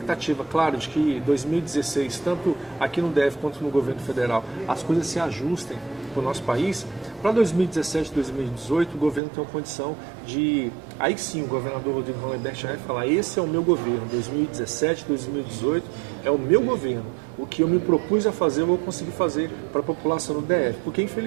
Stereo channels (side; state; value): left; drops out; at 9.2 s